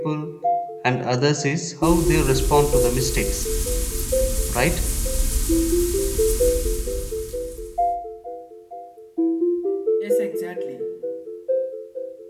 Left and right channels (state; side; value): identical; both; correlation 1.00